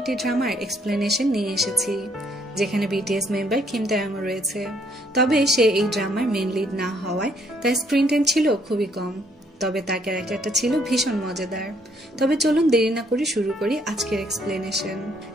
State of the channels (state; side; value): normal; both; correlation 0.67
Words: ড্রামার এক্সপ্লেনেশন নিয়ে এসেছি, যেখানে বিটিএস মেম্বার কিম তাeyong রয়েছে। তবে সে এই ড্রামার মেন লিড না হওয়ায় তার স্ক্রিন টাইম ছিল খুবই কম, তবে তার ক্যারেক্টারটা ছিল ভীষণ মজাদার। তবে চলুন দেরি না করে শুরু করি আজকের এক্সপ্লেনেশন।